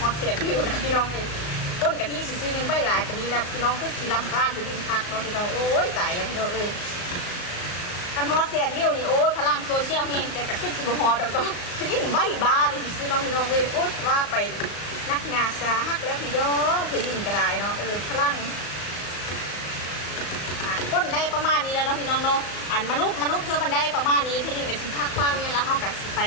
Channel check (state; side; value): late; right; 36 ms